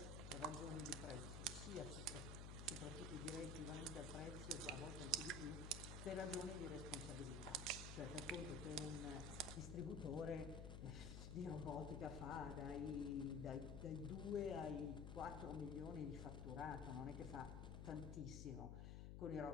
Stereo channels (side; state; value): left; noise; hum, 5 dB below the sound